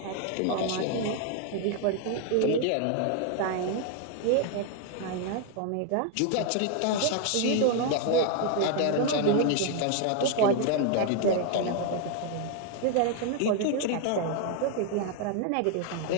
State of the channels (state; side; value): different; both; correlation 0.00